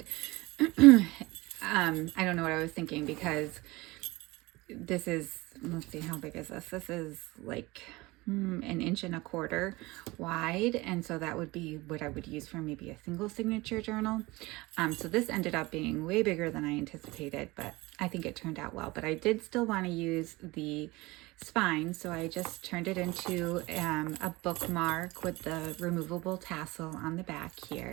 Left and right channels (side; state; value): left; quieter; 21.7 dB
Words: I don't know what I was thinking, because this is, let's see, how big is this? This is like 1.25 inches wide, and so that would be what I would use for maybe a single signature journal. So this ended up being way bigger than I anticipated, but I think it turned out well. But I did still want to use the spine, so I just turned it into a bookmark with the removable tassel on the back